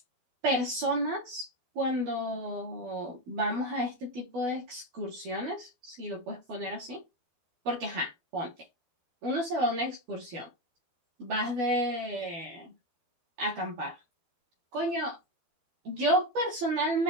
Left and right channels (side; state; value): left; late; 12 ms